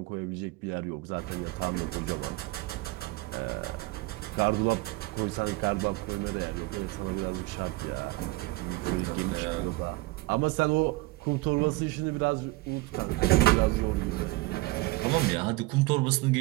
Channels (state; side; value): quieter; left; 21.5 dB